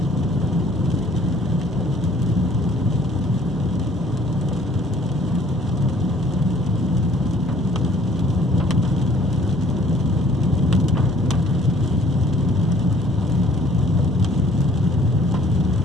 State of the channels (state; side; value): normal; both; correlation 0.57